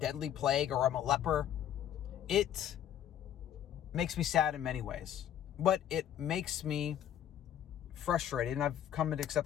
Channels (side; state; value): right; quieter; 10.5 dB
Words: plague or I'm a leper. It makes me sad in many ways, but it makes me frustrated, and I've come to